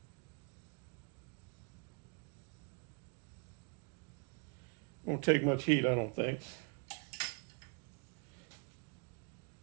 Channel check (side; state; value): left; quieter; 36.2 dB